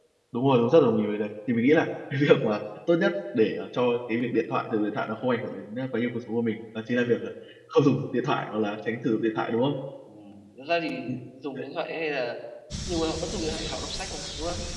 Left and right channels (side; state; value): both; identical; correlation 1.00